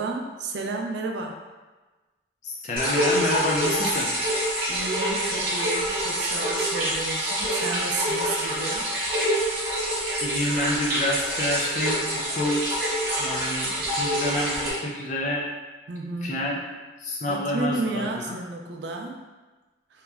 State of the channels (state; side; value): normal; both; correlation 0.22